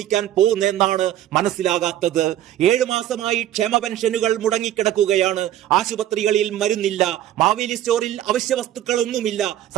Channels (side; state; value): left; quieter; 12.5 dB